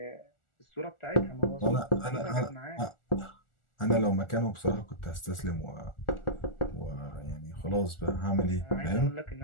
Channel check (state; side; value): late; right; 1.4 ms